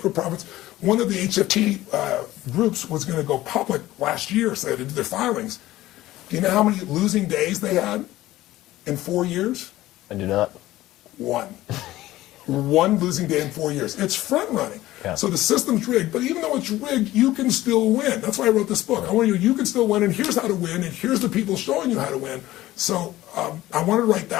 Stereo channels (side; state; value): right; quieter; 16.0 dB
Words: profits. One of the HFT groups was going to go public last year, so they had to do their filings. Do you know how many losing days they had in 4 years? I do not. One. One losing day in 4 years. It's front running. Yeah. So the system's rigged, but even though it's rigged, you can still win. That's why I wrote this book. I want you can still win, and here's how to win, and here's the people showing you how to win. So I wanted to right